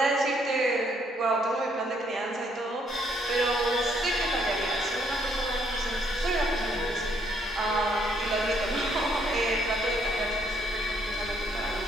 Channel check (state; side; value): normal; both; correlation 0.70